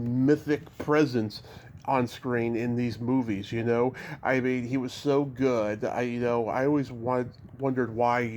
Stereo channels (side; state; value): both; identical; correlation 1.00